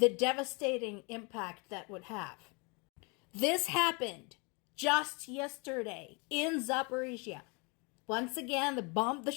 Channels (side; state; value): right; quieter; 30.9 dB